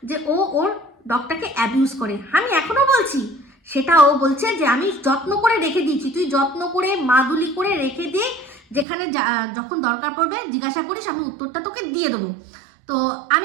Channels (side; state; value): left; drops out; at 8.8 s